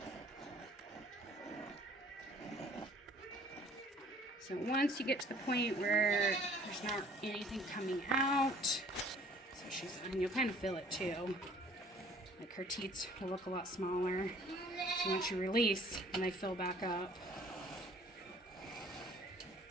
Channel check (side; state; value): both; normal; correlation 0.54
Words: So once you get to the point where there's not anything coming out, so and you'll kind of feel it too. Like her teats will look a lot smaller. So once you release, and they fill back up.